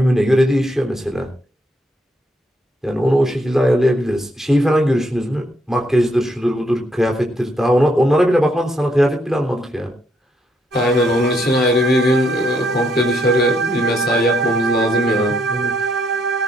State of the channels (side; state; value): both; normal; correlation 0.74